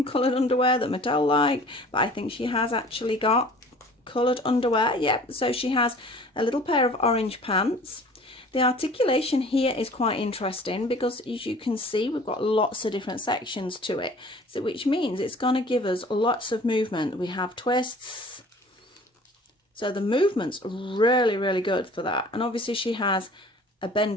coloured underwear that Mattel like, but I think she has actually got coloured underwear. Yep, so she has a little pair of orange pants. The articulation here is quite interesting because, as you can see, we've got lots of different sections to it, so which means it's going to give us lots of movement. We have twists, so the movement's really, really good for that. And obviously she has a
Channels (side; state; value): both; normal; correlation 0.48